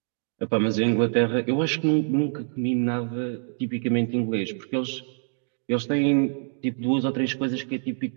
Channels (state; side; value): silent; left; 61 dB below the other